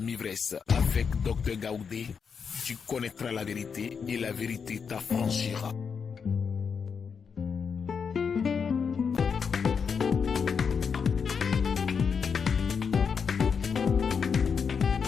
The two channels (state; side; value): quieter; right; 6.2 dB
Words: mi-vresse avec Dr Gaoudé, tu connaîtras la vérité et la vérité t'affranchira.